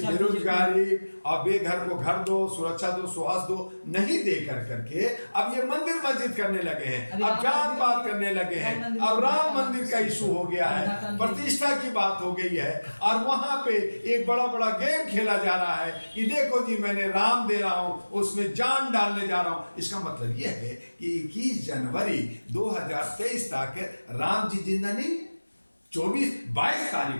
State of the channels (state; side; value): inverted; both; correlation -1.00